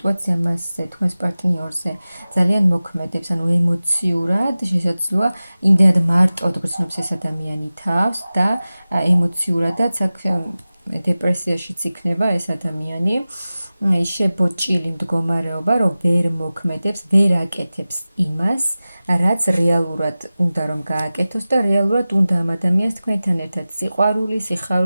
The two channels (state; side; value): inverted; both; correlation -0.96